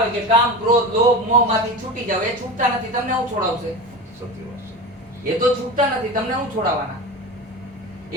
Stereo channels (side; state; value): both; normal; correlation 0.27